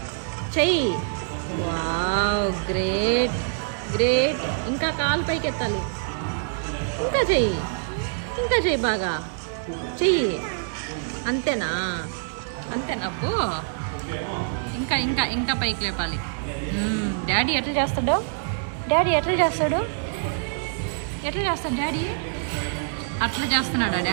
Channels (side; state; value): left; silent; digital silence